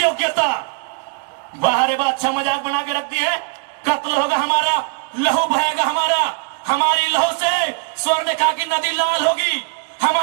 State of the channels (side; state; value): left; quieter; 35.3 dB